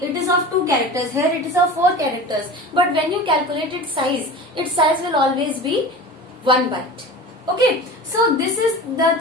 it is of 2 characters. Here it is of 4 characters. But when you calculate its size will always be 1 byte. Okay, so this is the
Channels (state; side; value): normal; both; correlation 0.34